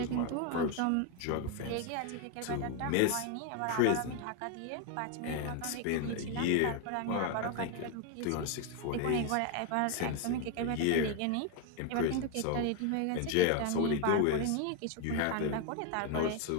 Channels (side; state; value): both; different; correlation 0.01